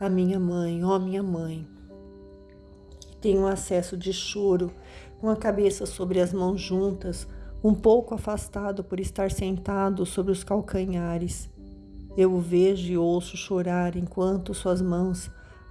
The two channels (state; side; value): identical; both; correlation 1.00